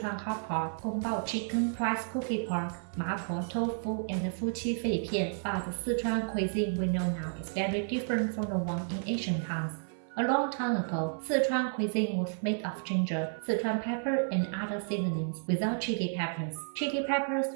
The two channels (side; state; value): left; silent; 57 dB below the other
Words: hot pot, Gongbao chicken, rice cookie pork, mapo tofu, and Fuqi fei pian. But the Sichuan cuisine we know now is very different from the one in Asian towns. A long time ago, Sichuan cuisine was made of ginger, Sichuan pepper, and other seasonings without chili peppers. Chili peppers